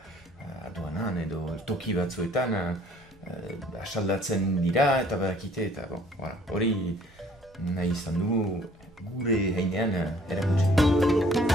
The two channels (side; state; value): both; normal; correlation 0.58